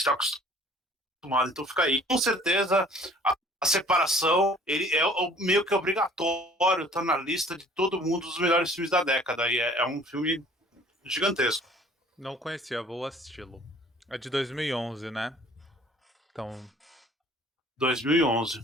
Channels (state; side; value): normal; both; correlation 0.53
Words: acostumado. Então fica aí. Com certeza, a separação ele é meio que obrigatório, tá na lista de todo mundo dos melhores filmes da década. E é um filme gigantesco. Não conhecia, vou assisti-lo. É de 2011, né? Então, 2011.